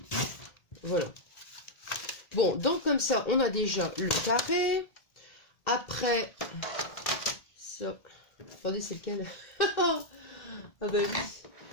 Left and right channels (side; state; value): right; late; 2.1 ms